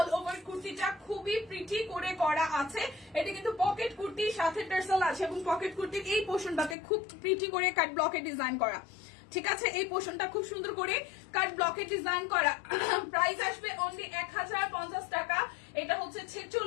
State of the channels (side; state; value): right; drops out; at 6.8 s